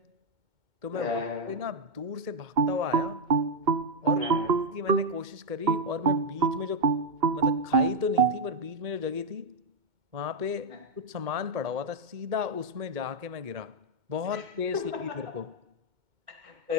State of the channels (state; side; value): late; left; 2.2 ms